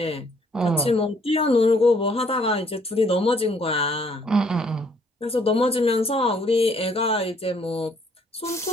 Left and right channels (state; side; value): normal; both; correlation 0.64